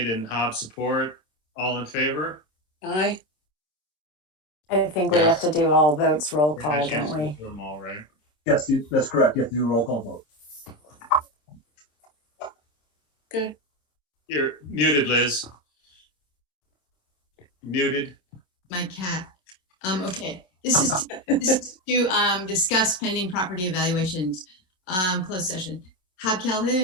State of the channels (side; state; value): right; late; 27 ms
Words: and Hobb support. All in favor? Aye. I think we have to do all votes roll call, don't we? Do them all, right? Yes, that's correct. You have to do a roll call vote. Good. You're muted, Liz. Muted. My cat. Okay. This is to discuss pending property evaluations. Closed session. Hobb